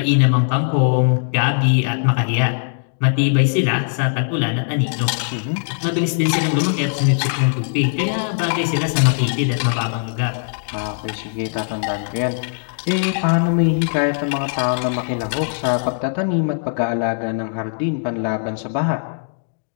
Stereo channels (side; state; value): right; silent; digital silence